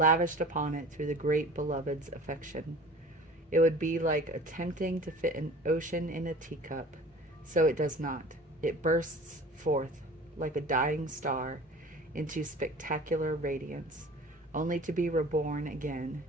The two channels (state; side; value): normal; both; correlation 0.43